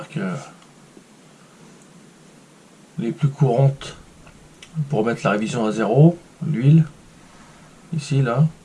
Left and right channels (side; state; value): both; identical; correlation 1.00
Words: les plus courantes pour mettre la révision à zéro, l'huile, ici là.